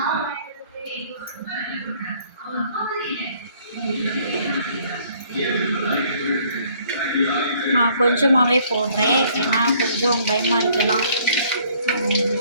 நான் கொஞ்சமாகவே போடுறேன், ஏன்னா கொஞ்சம் பயமாக இருக்கலாம்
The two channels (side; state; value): both; inverted; correlation -0.60